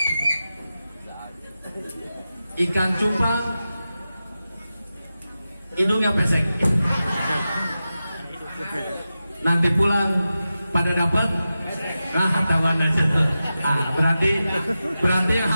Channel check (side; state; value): both; inverted; correlation -0.93